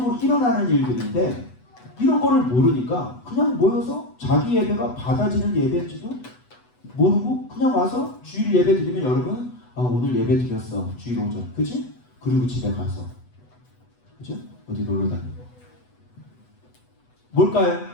일어나는 일들인데, 이런 거를 모르니까 그냥 모여서 자기 예배가 받아지는 예배인지도 모르고 그냥 와서 주일 예배 드리면, 여러분 오늘 예배 드렸어, 주일 오전, 그치? 그리고 집에 가서, 그죠? 어디 놀러 다니고. 뭘까요?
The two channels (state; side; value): late; right; 8.1 ms